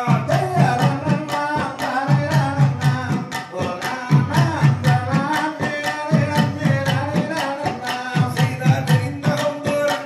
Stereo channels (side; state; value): both; identical; correlation 1.00